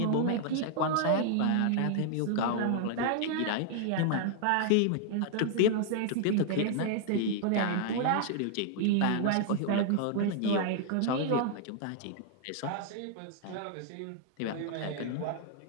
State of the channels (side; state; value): both; different; correlation 0.00